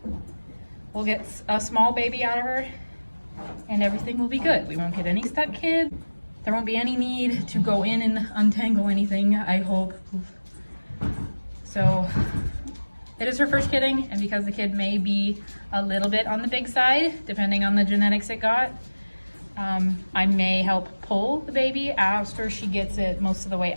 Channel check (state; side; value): inverted; both; correlation -1.00